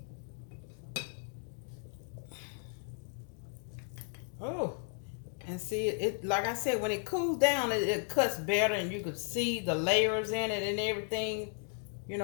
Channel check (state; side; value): silent; right; 55 dB below the other